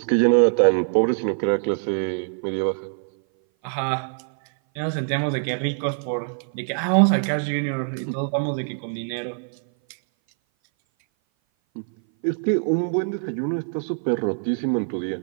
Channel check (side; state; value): left; silent; 58 dB below the other